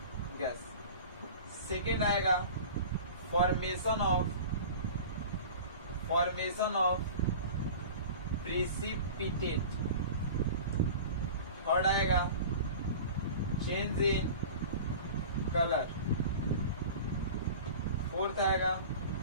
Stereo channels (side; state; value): both; inverted; correlation -0.37